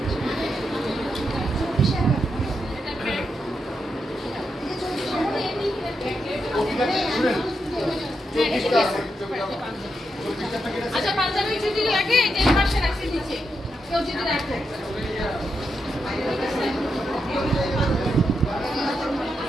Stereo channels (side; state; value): both; normal; correlation 0.84